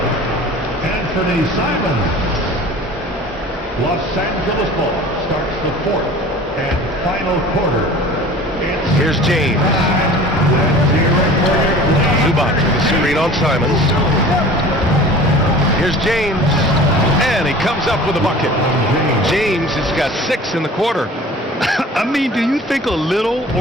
Anthony Simons. Los Angeles ball starts the fourth and final quarter. Here's James. Zubac with the screen on Simons. Here's James. And he comes up with a bucket. James has got 6 in the quarter. I mean, do you think a little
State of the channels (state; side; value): normal; both; correlation 0.43